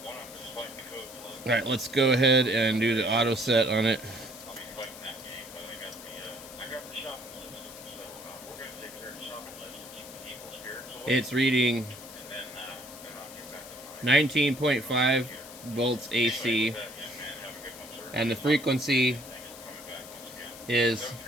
Alright, let's go ahead and do the auto set on it. It's reading 19.5 volts AC, and the frequency is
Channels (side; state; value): left; noise; hiss, 15 dB below the sound